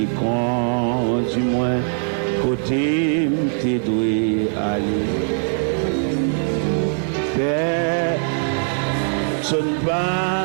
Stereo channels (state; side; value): silent; left; digital silence